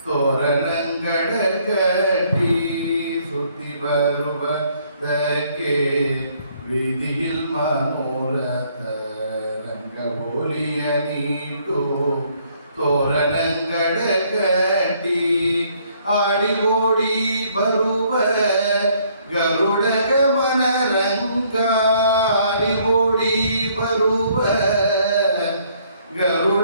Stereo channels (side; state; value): both; inverted; correlation -0.65